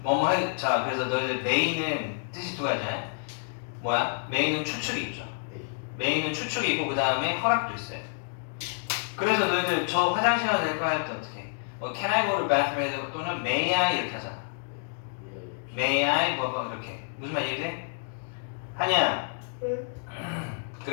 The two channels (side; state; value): right; silent; digital silence